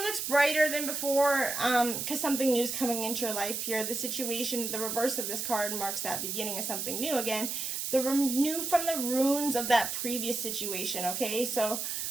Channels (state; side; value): noise; right; hiss, 3 dB below the sound